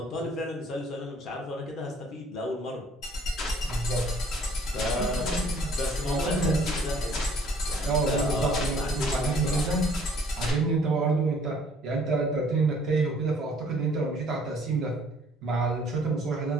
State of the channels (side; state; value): both; normal; correlation 0.58